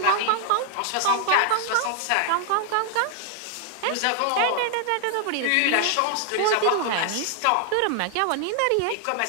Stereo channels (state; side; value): different; both; correlation 0.00